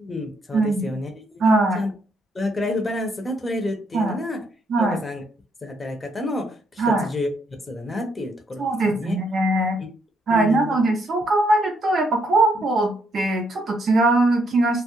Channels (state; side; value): normal; both; correlation 0.73